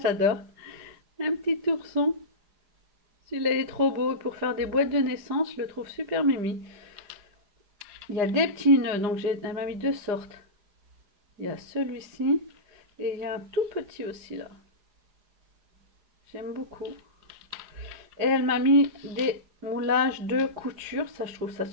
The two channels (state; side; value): late; left; 4.9 ms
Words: Un petit ourson. Celui-là est trop beau. Pour faire des boîtes de naissance, je le trouve super mimi. Il y a des petits nœuds. Donc elle m'a mis 2 sortes. Il y a celui-ci. Et il y a un tout petit aussi là. J'aime beaucoup. Et elle m'a mis des moulages de couture. Ça, je trouve ça